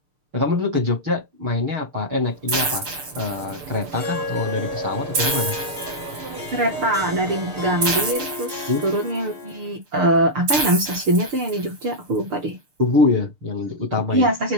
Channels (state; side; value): late; left; 6.8 ms